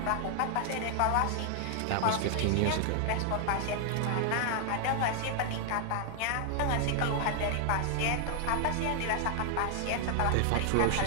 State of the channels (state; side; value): different; both; correlation 0.00